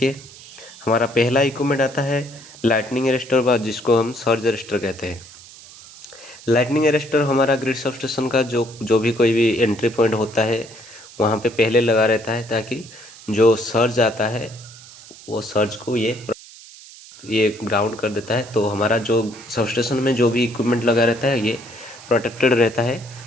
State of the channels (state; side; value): noise; right; hiss, 19 dB below the sound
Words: हमारा पहला इक्विपमेंट आता है लाइटनिंग अरेस्टर, जिसको हम सर्ज अरेस्टर कहते हैं। लाइटनिंग अरेस्टर हमारा ग्रिड सबस्टेशन का जो भी कोई भी एंट्री पॉइंट होता है वहाँ पे पहले लगा रहता है, ताकि जो सर्ज आता है वो सर्ज को ये ग्राउंड कर देता है। तो हमारा जो सबस्टेशन में जो भी इक्विपमेंट लगा रहता है ये प्रोटेक्टेड रहता है